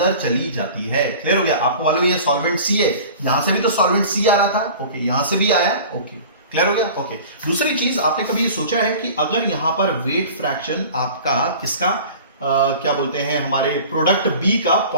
चली जाती है, क्लियर हो गया। आपको मालूम है सॉल्वेंट सी है, यहां से भी तो सॉल्वेंट सी आ रहा था, ओके, यहां से भी आया, ओके, क्लियर हो गया, ओके। दूसरी चीज, आपने कभी सोचा है कि अगर यहां पर वेट फ्रैक्शन आपका किसका, क्या बोलते हैं, हमारे प्रोडक्ट बी का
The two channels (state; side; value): inverted; both; correlation -0.41